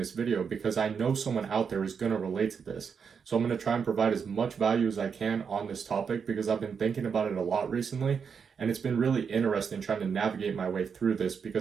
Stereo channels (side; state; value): left; quieter; 6.4 dB